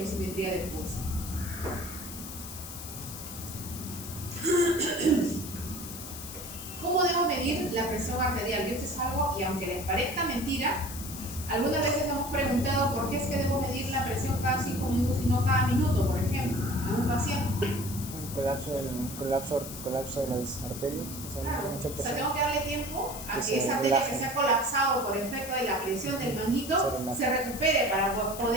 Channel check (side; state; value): left; noise; hiss, 11 dB below the sound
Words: oximetría del pulso. ¿Cómo debo medir la presión arterial? Y esto es algo, y aunque les parezca mentira, algunas veces hemos preguntado por qué es que debo medir la presión cada 5 minutos y no cada minuto, por ejemplo, a un paciente. Colapso de las arterias. Claro, Mucha o sea, presión. tengo que darle tiempo a Que que esa se arteria relaje. que se ha colapsado por efecto de la presión del manguito se recupere para